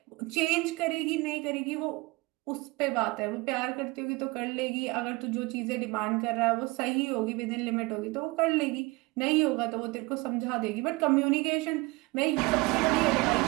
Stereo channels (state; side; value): quieter; left; 23.9 dB